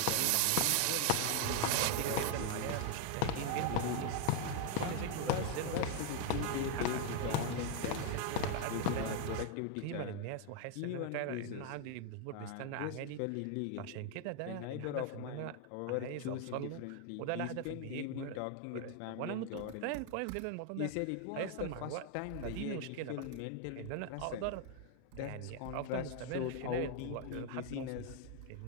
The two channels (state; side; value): different; both; correlation 0.00